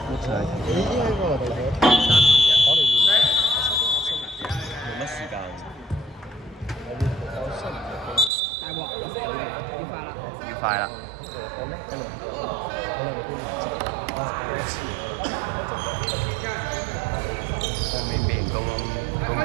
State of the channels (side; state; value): left; drops out; at 8.3 s